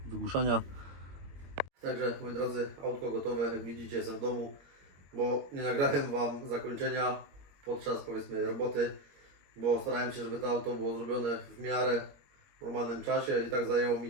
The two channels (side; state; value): left; late; 21 ms